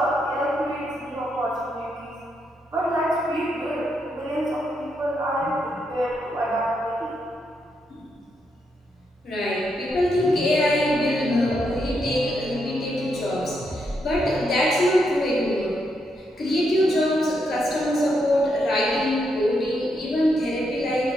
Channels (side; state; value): both; normal; correlation 0.80